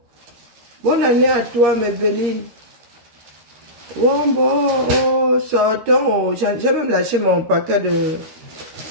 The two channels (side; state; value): left; late; 13 ms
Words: Bonne année à toi, mes belles. Bon, sortons. J'ai même lâché mon paquet de...